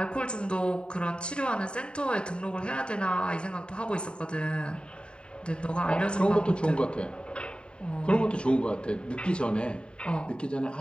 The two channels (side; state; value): right; late; 0.052 ms